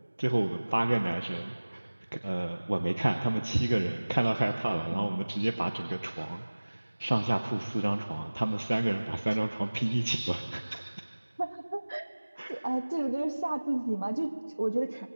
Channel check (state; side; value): inverted; both; correlation -1.00